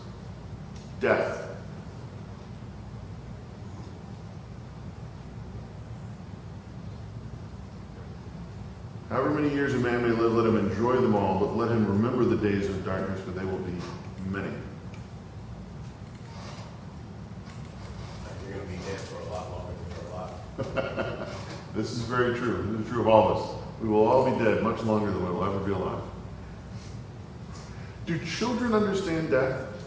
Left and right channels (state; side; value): identical; both; correlation 1.00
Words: Death. However many years a man may live, let him enjoy them all, but let him remember the days of darkness, for they will be many. You're gonna be dead for a lot longer than you're alive. This is very true. This is true of all of us. We will all be dead much longer than we will ever be alive. Do children understand death?